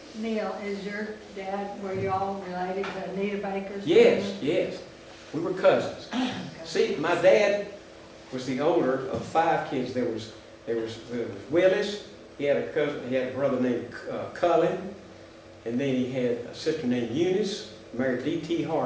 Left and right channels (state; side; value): identical; both; correlation 1.00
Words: Neil, is your dad, were you all related to Anita Baker's Yes, family? yes. We were cousins. See, my dad was the older of 5 kids. There was Willis. He had a cousin. He had a brother named Cullen, and then he had a sister named Eunice, married D.T.